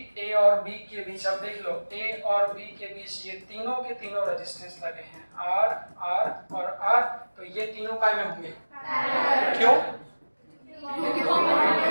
ए और बी के बीच, अब देख लो, ए और बी के बीच ये तीनों के तीनों रेजिस्टेंस लगे हैं, आर, आर और आर। तो ये तीनों काय में होंगे? क्यों?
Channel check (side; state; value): both; inverted; correlation -1.00